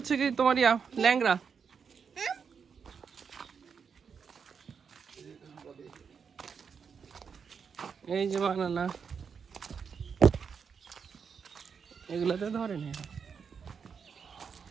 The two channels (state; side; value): quieter; left; 6.3 dB